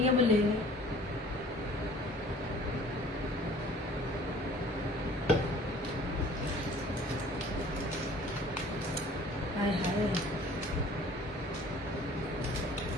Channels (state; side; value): normal; both; correlation 0.50